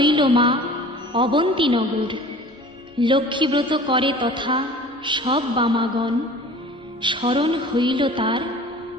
মা অবন্তীনগর। লক্ষ্মীব্রত করে তথা সব বামাগণ, স্মরণ হইল তার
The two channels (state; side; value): normal; both; correlation 0.43